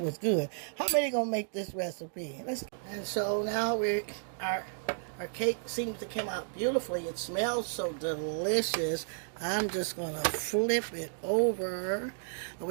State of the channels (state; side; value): silent; left; digital silence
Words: good. How many gonna make this recipe? And so now we are Our cake seems to come out beautifully. It smells so delicious. I'm just going to flip it over. I